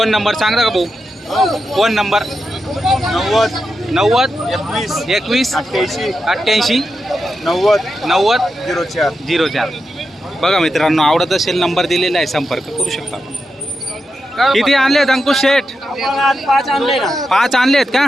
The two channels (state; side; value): normal; both; correlation 0.88